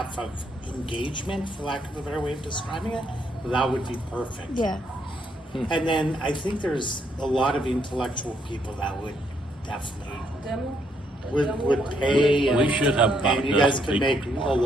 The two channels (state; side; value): normal; both; correlation 0.73